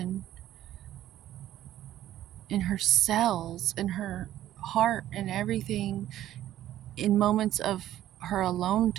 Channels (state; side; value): quieter; left; 12.9 dB